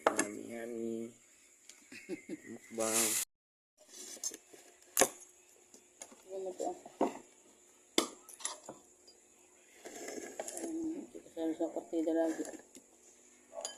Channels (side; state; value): both; identical; correlation 1.00